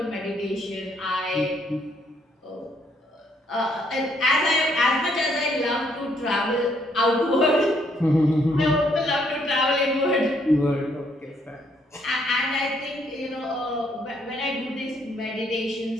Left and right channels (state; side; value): normal; both; correlation 0.70